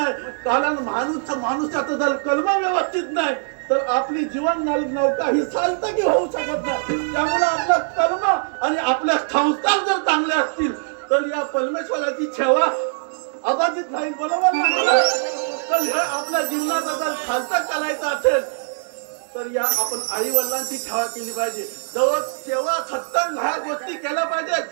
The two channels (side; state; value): left; silent; 63 dB below the other